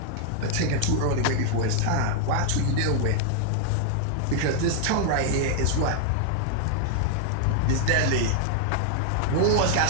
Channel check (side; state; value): both; different; correlation 0.00